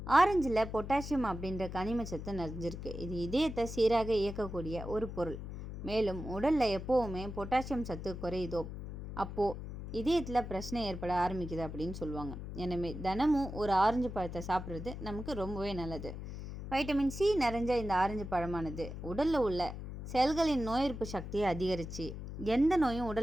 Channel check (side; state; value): left; noise; hum, 9 dB below the sound